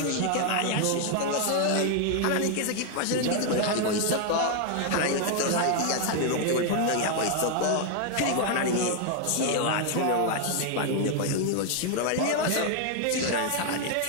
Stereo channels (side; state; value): both; different; correlation 0.00